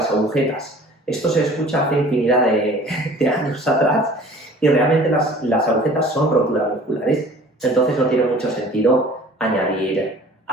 agujetas. Esto se escucha hace infinidad de años atrás y realmente las agujetas son roturas musculares, entonces no tiene mucho sentido añadir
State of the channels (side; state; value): both; normal; correlation 0.48